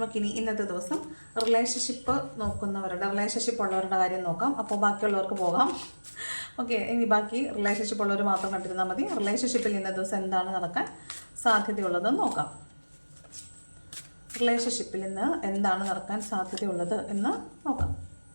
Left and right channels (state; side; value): inverted; both; correlation -1.00